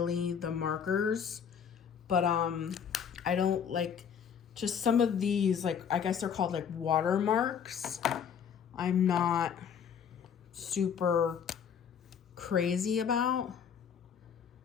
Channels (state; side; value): quieter; right; 7.6 dB